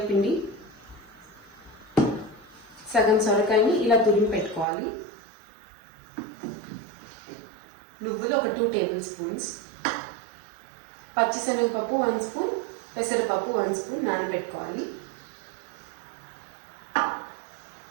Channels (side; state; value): left; drops out; at 4.7 s